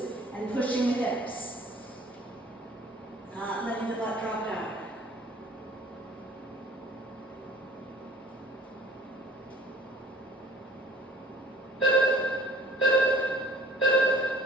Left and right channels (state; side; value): normal; both; correlation 0.52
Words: and pushing the hips. Not letting the butt drop down.